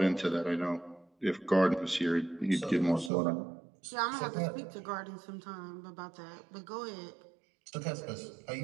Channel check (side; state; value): left; drops out; at 3.1 s